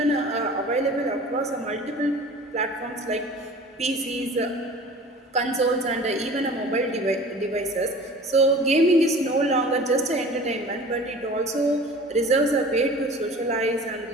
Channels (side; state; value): both; normal; correlation 0.42